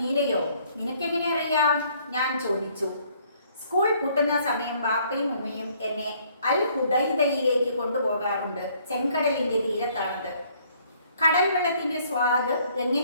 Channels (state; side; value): inverted; both; correlation -0.63